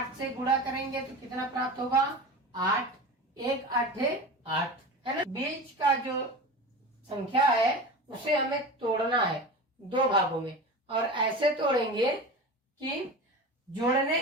से गुणा करेंगे तो कितना प्राप्त होगा, 8। 1 8 8, है ना। बीच का जो संख्या है उसे हमें तोड़ना है 2 भागों में, और ऐसे तोड़ेंगे कि जोड़ने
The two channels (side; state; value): both; normal; correlation 0.30